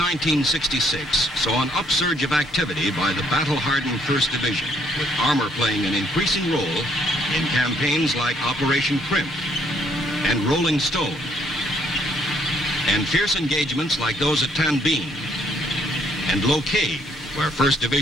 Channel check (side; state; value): both; normal; correlation 0.67